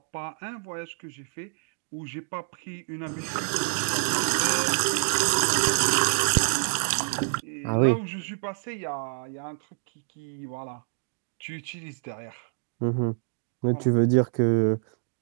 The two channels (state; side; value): silent; left; digital silence